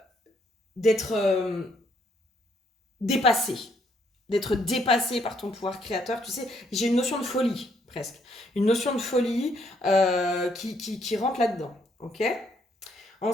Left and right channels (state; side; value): normal; both; correlation 0.70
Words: d'être dépassé. D'être dépassé par ton pouvoir créateur. Tu sais, j'ai une notion de folie, presque. Une notion de folie qui rentre là-dedans. Ok ?